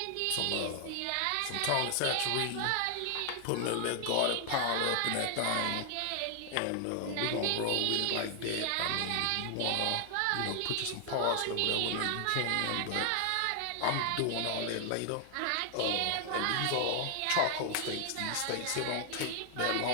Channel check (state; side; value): different; both; correlation 0.00